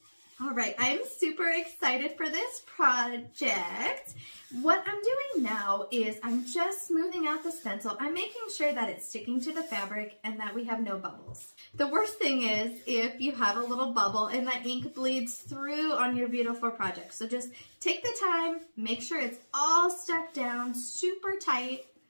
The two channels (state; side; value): inverted; both; correlation -1.00